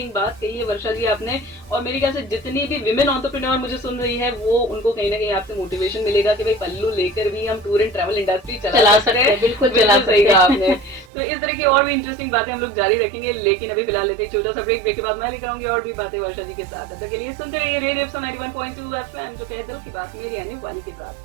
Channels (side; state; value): left; drops out; at 11.1 s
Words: बात कही है वर्षा जी आपने, और मेरे ख्याल से जितनी भी विमेन एंटरप्रेन्योर मुझे सुन रही है वो उनको कहीं ना कहीं आपसे मोटिवेशन मिलेगा कि भाई पल्लू लेकर भी हम टूर एंड ट्रैवल इंडस्ट्री चला सकते हैं। बिल्कुल चला सही कहा आपने। तो इस तरह की और भी इंटरेस्टिंग बातें हम लोग जारी रखेंगे, लेकिन अभी फिलहाल लेते हैं छोटा सा ब्रेक। ब्रेक के बाद मैं लेकर आऊंगी और भी बातें वर्षा जी के साथ। तब तक के लिए सुनते रहिए रेडियो 91.2 91.2 FM जो कहे दिल की बात, मेरी यानी वानी के